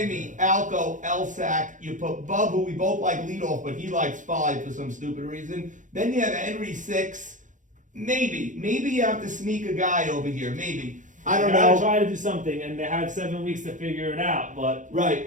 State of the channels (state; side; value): late; left; 0.37 ms